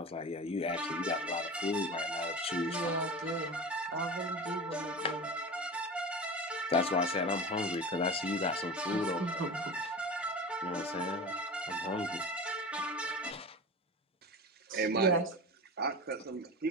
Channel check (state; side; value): normal; both; correlation 0.31